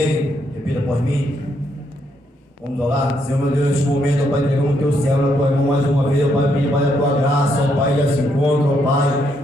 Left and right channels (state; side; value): normal; both; correlation 0.75